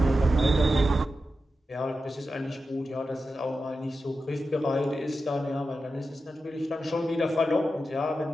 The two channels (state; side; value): normal; both; correlation 0.91